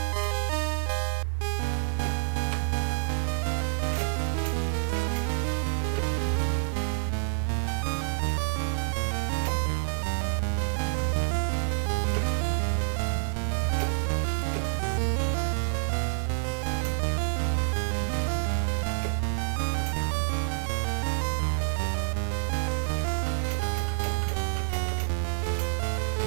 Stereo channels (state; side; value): silent; left; digital silence